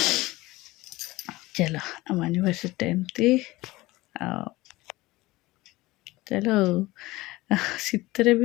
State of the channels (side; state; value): right; quieter; 19.7 dB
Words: ଚାଲ ଆମ ଆନିଭର୍ସରୀଟା ଏମିତି ଆଉ ଚାଲ ଶୀତରେ ବି